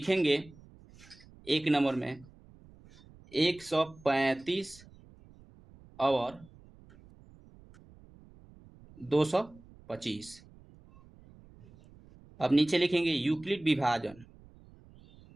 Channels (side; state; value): right; noise; rumble, 24 dB below the sound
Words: एक नंबर में 135 और 225। अब नीचे लिखेंगे यूक्लिड विभाजन,